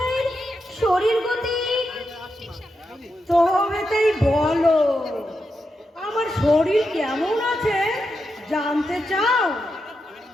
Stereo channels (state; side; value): normal; both; correlation 0.86